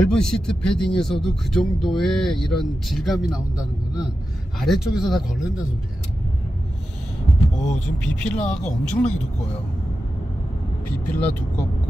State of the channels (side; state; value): both; normal; correlation 0.91